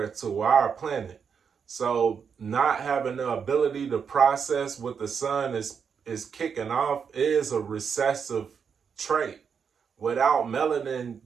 to our planet. So not having the ability to process what the sun is kicking off is a recessive trait. Without melanin,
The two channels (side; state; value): left; quieter; 6.6 dB